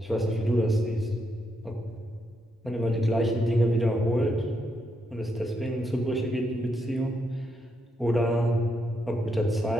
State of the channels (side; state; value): both; normal; correlation 0.80